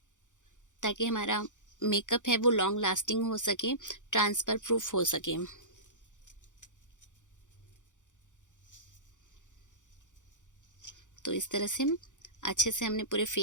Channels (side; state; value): right; late; 0.86 ms